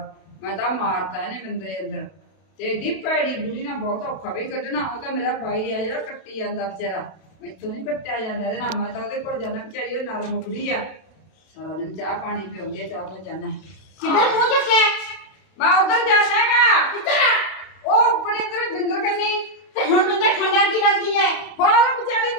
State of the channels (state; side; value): late; right; 32 ms